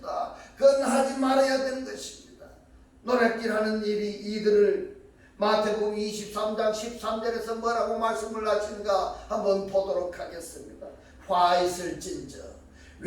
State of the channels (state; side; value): identical; both; correlation 1.00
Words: 그건 하지 말아야 되는 것입니다. 노략질하는 일이 이들을 마태복음 23장 13절에서 뭐라고 말씀을 하시는가 한번 보도록 하겠습니다. 화 있을진저